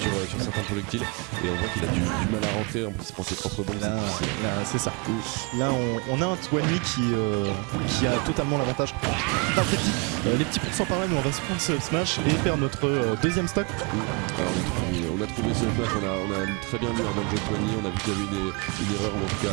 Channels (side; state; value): left; quieter; 32.2 dB